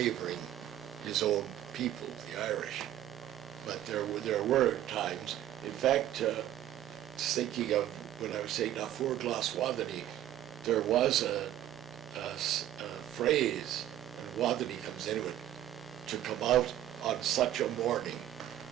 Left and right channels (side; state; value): left; quieter; 12.3 dB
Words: his own people, the Irish. But there were times, in fact, thinking of when I was saying na fuór glas Wadani, there was a phrase, and Wadani comes into it, to come out on such a morning.